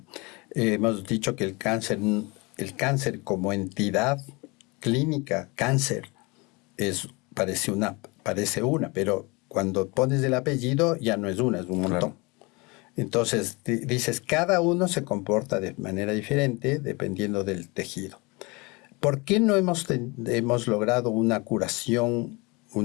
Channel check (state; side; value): quieter; right; 26.7 dB